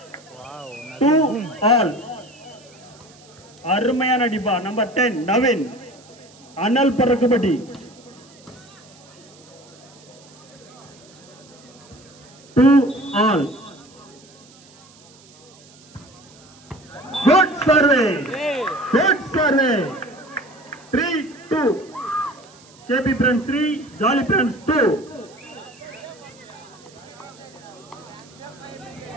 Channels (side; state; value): right; noise; hiss, 25 dB below the sound